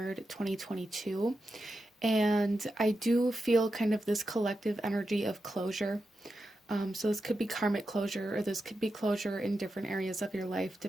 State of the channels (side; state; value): both; normal; correlation 0.89